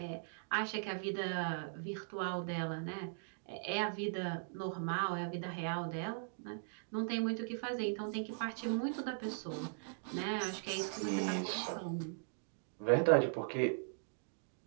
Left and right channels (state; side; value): silent; left; digital silence